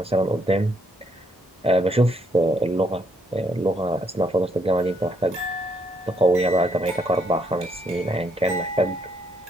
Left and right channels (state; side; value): normal; both; correlation 0.72